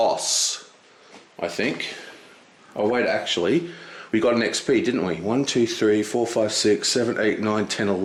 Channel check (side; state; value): both; identical; correlation 1.00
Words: I think. Oh wait, actually, we got an XP, didn't we? 1, 2, 3, 4, 5, 6, 7, 8, 9, 10,